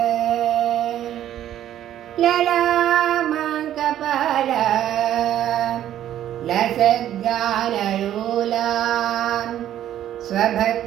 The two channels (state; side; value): quieter; left; 11.6 dB